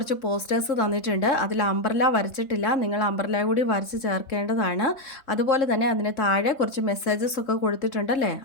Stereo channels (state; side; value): late; right; 3.7 ms